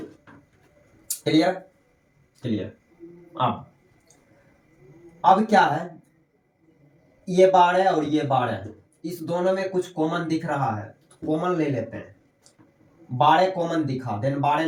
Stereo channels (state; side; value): identical; both; correlation 1.00